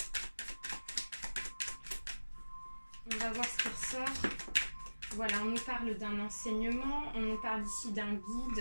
on va voir ce qui ressort. Voilà, on nous parle d'un enseignement, on nous parle ici d'un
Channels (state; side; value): inverted; both; correlation -1.00